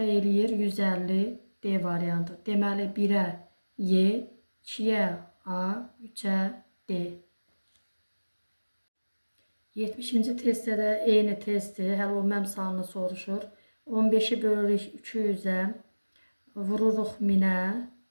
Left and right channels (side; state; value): both; inverted; correlation -1.00